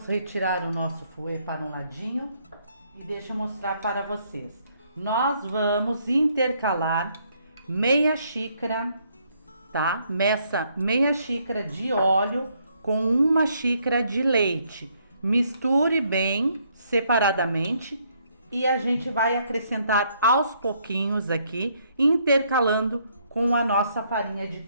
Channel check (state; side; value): inverted; both; correlation -0.70